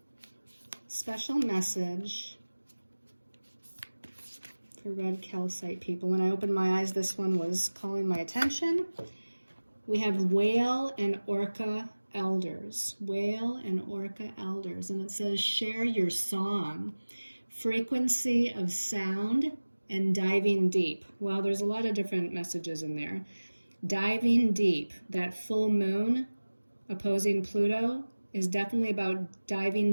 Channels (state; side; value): inverted; both; correlation -1.00